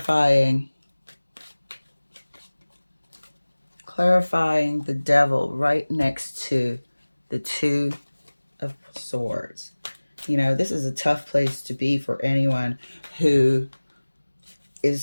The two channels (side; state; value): both; inverted; correlation -1.00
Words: the Devil right next to the Two of Swords. This is a tough place to be for anyone who